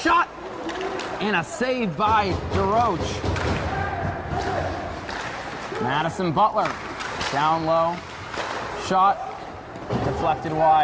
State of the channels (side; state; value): both; identical; correlation 1.00